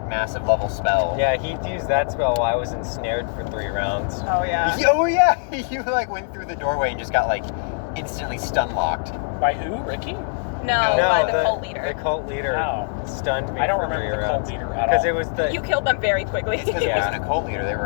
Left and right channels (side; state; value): right; silent; digital silence